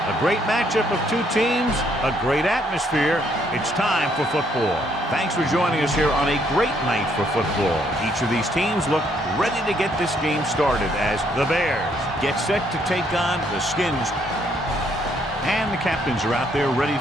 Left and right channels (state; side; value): normal; both; correlation 0.70